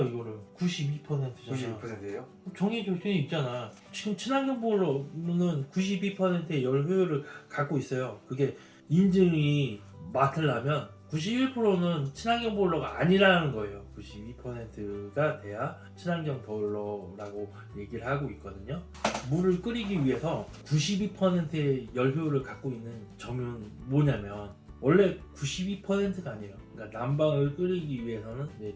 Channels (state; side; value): identical; both; correlation 1.00